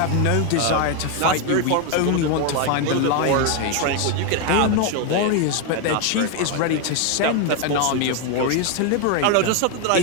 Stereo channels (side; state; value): both; different; correlation 0.01